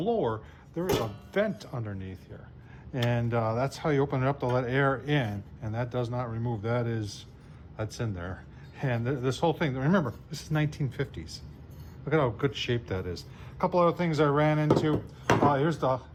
there is a vent underneath here. And that's how you open it up to let air in. And that does not remove, that's in there. And this whole thing, remember, this is 1950s. Look at how good shape that is. A couple other things I ran into. Here's the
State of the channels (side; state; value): both; identical; correlation 1.00